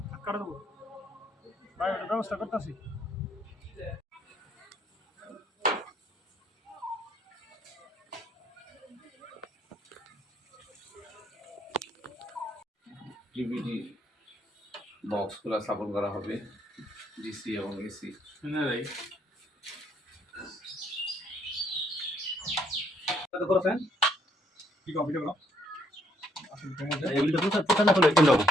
কাটা দেবো ভাই ওটা ব্যবস্থা করতেছি ডিভিডি বক্সগুলো স্থাপন করা হবে ডিসি এবং এসি না ভাই কত করছেন কি কম্পিউটার করো এগুলো তো প্রচার না করলে কেন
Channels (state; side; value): normal; both; correlation 0.69